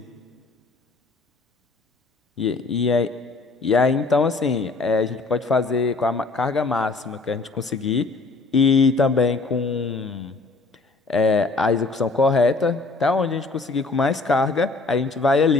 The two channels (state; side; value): quieter; right; 3.7 dB